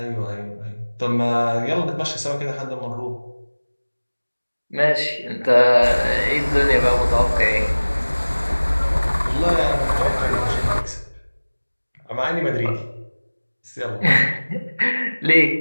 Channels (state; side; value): inverted; both; correlation -1.00